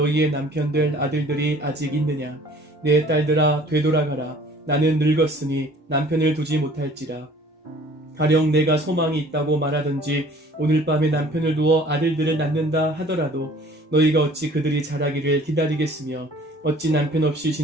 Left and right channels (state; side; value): normal; both; correlation 0.51